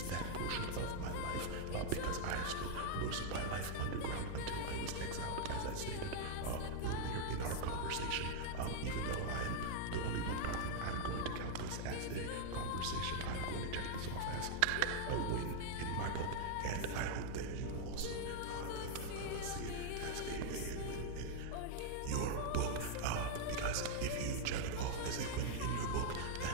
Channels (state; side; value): different; both; correlation -0.01